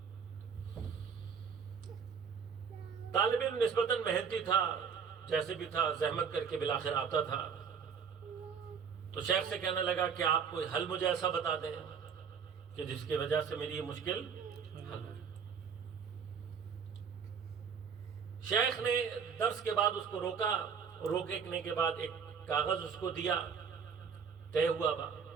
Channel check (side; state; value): left; quieter; 6.5 dB